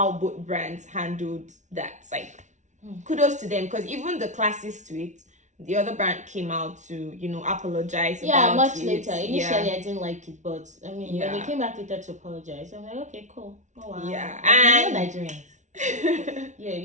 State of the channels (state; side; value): late; left; 0.35 ms